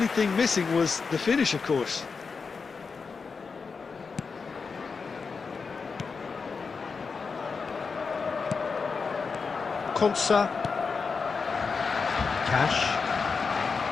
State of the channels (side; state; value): right; quieter; 5.0 dB